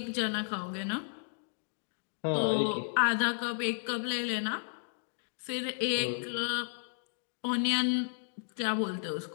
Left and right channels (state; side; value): silent; right; digital silence